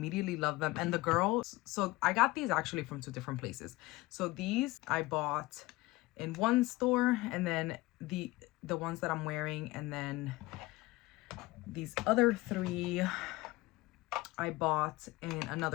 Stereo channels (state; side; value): quieter; right; 20.3 dB